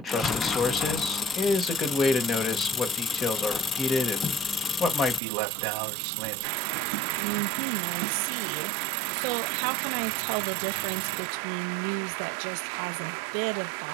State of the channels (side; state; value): left; drops out; at 5.2 s